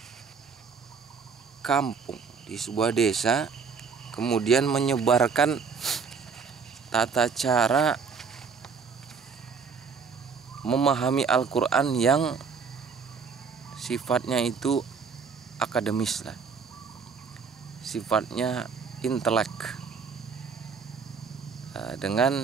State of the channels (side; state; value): left; quieter; 5.6 dB